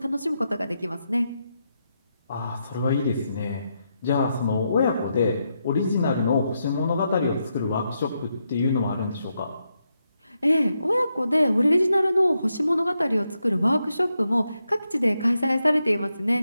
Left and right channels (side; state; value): both; inverted; correlation -0.83